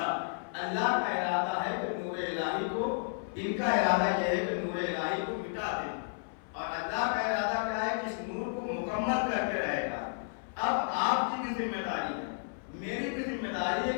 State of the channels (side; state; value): right; silent; 56 dB below the other